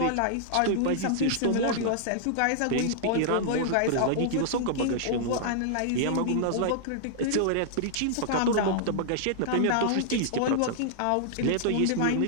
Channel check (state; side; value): different; both; correlation -0.01